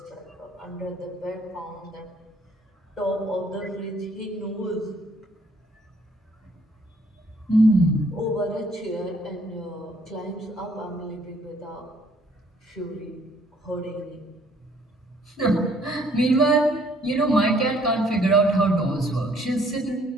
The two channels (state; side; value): normal; both; correlation 0.63